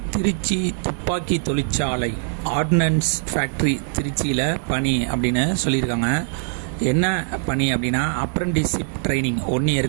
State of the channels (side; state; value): left; silent; 64 dB below the other